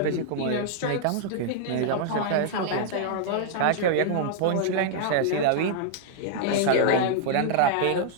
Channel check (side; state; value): both; different; correlation -0.01